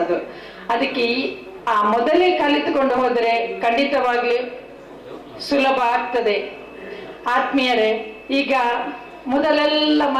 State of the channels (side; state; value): both; identical; correlation 1.00